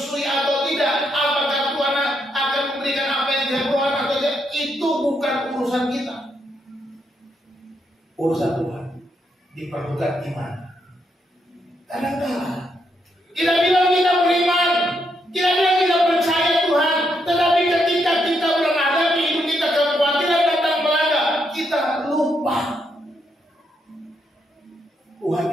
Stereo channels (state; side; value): normal; both; correlation 0.78